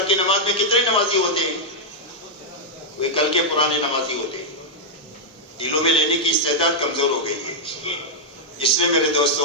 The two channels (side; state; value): both; normal; correlation -0.04